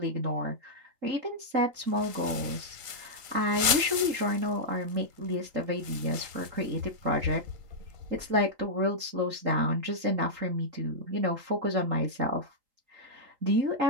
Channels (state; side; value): late; left; 3.9 ms